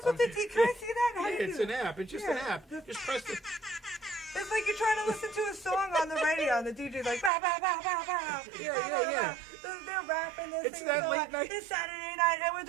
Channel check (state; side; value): drops out; left; at 7.3 s